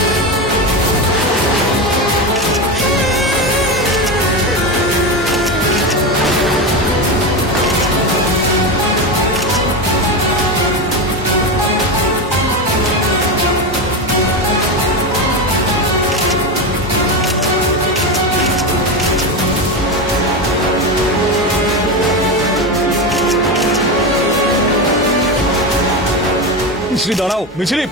মিছরি দাঁড়াও, মিছরি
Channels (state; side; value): normal; both; correlation 0.16